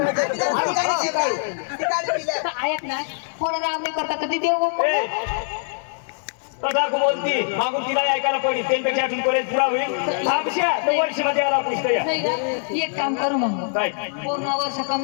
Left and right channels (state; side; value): silent; right; digital silence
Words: जरा ठिकाणी पिलं. तर ऐक ना कोण राम नाही करता कधी देऊ तदा बोलती मागून तिला ऐकायला पडली त्यांच्यापेक्षा अजून कॉलेज पुरा होईल थांबशा तर वर्षमध्ये याला पुस्तक या नाही का? एक काम करू मग काय पूर्ण वर्ष